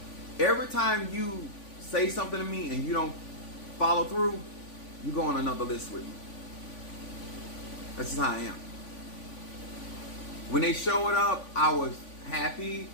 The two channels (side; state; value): right; late; 3.5 ms